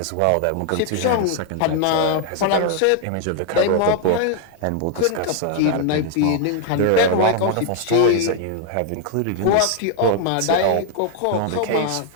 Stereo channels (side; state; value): both; different; correlation 0.00